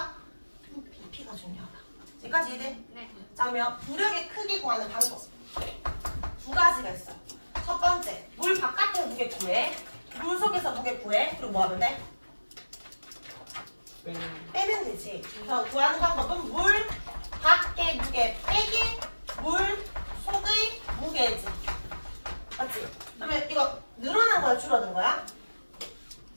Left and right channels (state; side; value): inverted; both; correlation -1.00